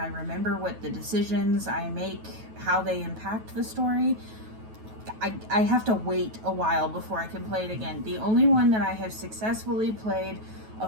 remember what the decisions I make, how they impact the story, I have to wait a while before I can play it again. The only one that I have successfully played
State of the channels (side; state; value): left; late; 9.2 ms